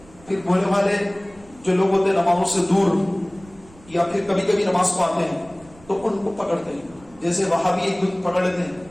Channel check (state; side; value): noise; right; rumble, 25 dB below the sound